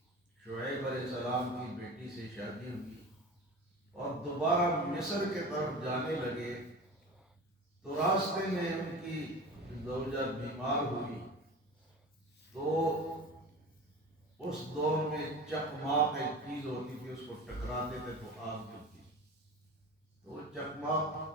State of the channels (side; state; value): both; normal; correlation 0.33